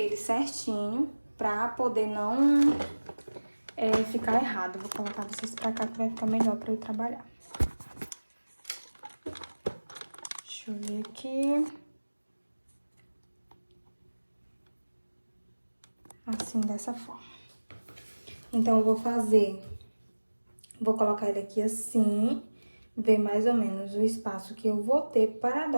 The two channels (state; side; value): inverted; both; correlation -1.00